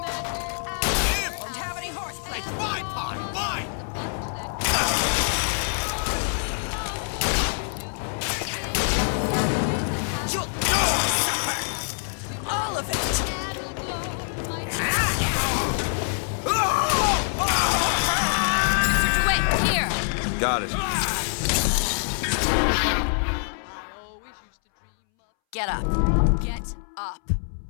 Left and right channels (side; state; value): right; silent; 61 dB below the other